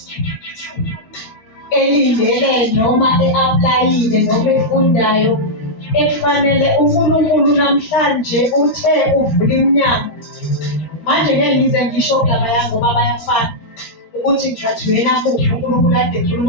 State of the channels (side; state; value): right; late; 13 ms